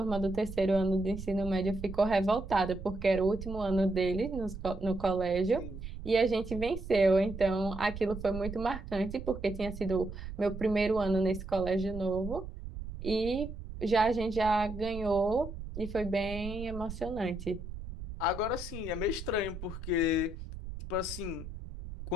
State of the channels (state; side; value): noise; right; rumble, 10 dB below the sound